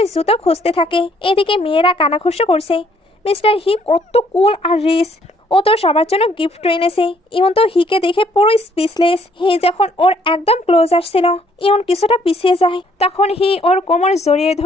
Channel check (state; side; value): normal; both; correlation 0.65